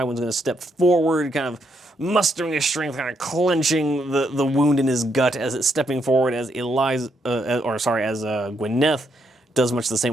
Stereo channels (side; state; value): both; normal; correlation 0.77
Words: going to step forward, kind of mustering his strength, kind of clenching the wound in his gut as it's stepping forward, as Gwyneth does much the